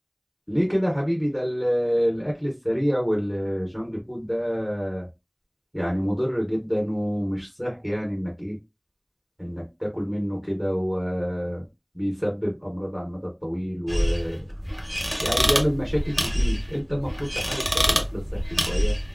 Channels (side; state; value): both; identical; correlation 1.00